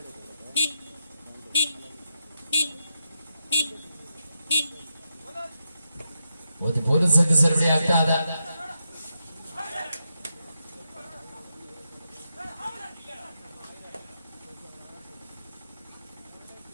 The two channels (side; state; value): both; inverted; correlation -0.85